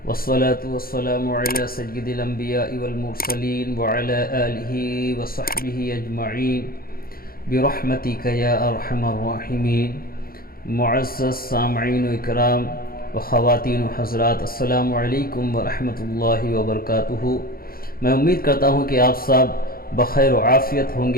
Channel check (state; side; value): late; right; 0.43 ms